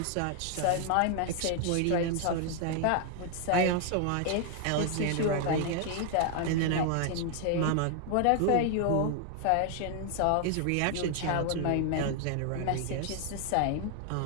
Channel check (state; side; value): different; both; correlation 0.00